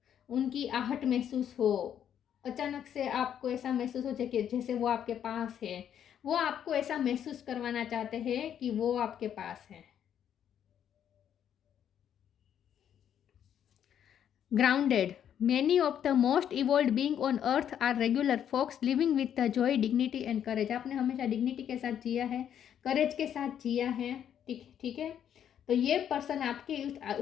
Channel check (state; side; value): quieter; right; 9.4 dB